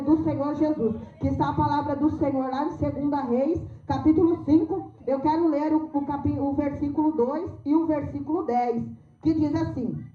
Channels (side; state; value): both; identical; correlation 1.00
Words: Senhor Jesus. Que está a palavra do Senhor lá em 2 Reis, capítulo 5. Eu quero ler o versículo 2 e o versículo 10. Que diz assim: